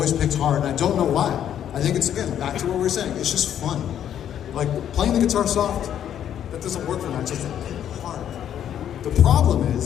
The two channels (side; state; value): right; quieter; 10.0 dB